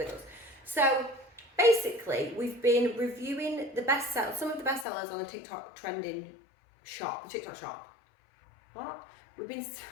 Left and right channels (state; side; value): drops out; right; at 4.9 s